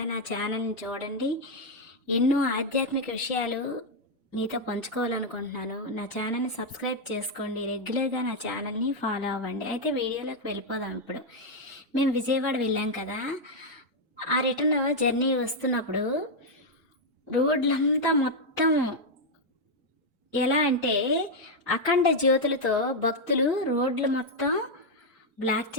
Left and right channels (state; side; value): normal; both; correlation 0.01